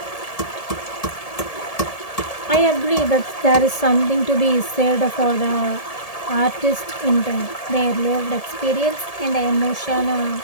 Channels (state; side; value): late; right; 1.7 ms